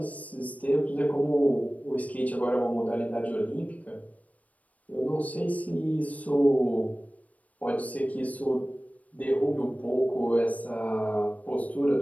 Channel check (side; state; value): right; late; 0.070 ms